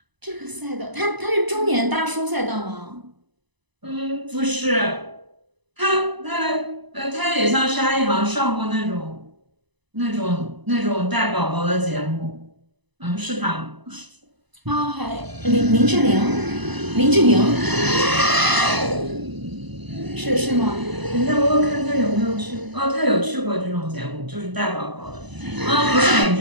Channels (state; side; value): late; left; 1.0 ms